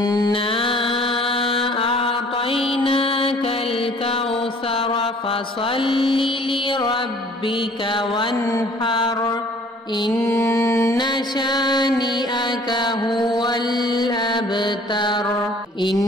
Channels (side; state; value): both; normal; correlation 0.54